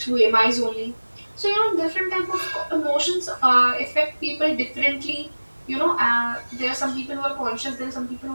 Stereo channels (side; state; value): both; inverted; correlation -1.00